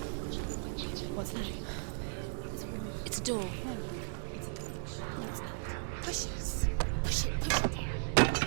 What's that? It's a door. Push it. Push it, push it.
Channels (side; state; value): left; silent; 54 dB below the other